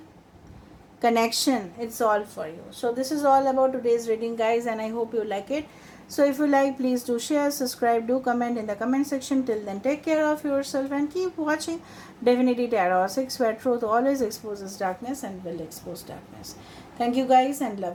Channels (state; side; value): identical; both; correlation 1.00